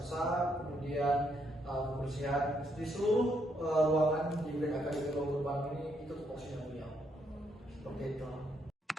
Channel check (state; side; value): normal; both; correlation 0.75